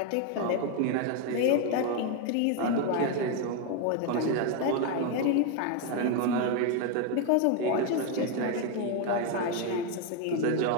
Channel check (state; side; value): different; both; correlation 0.01